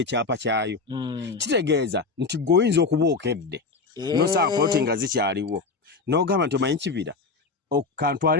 kyayo kitegeeza nti gweoyinza okuba okedde nosanga poloti nga zikyaliwo n'ogamba nti omanyi kibira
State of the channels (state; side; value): quieter; right; 4.2 dB